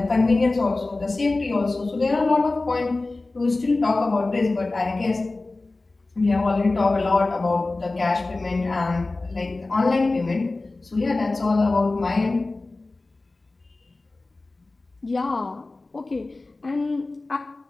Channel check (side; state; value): right; quieter; 3.2 dB